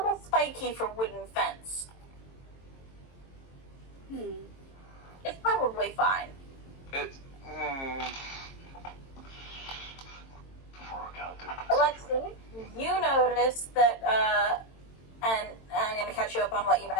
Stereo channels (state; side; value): late; right; 22 ms